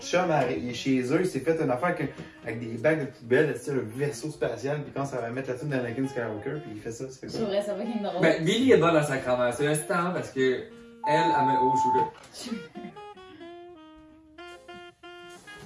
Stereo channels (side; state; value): both; identical; correlation 1.00